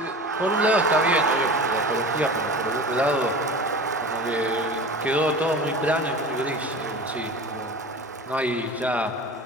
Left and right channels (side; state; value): both; normal; correlation 0.35